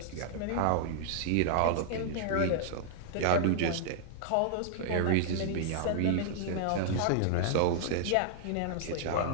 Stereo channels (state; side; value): different; both; correlation -0.01